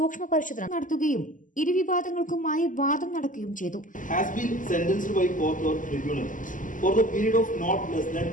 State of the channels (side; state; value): right; late; 0.38 ms